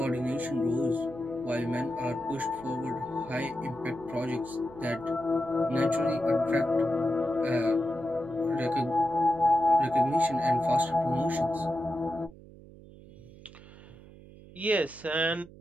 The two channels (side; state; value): right; noise; hum, 20 dB below the sound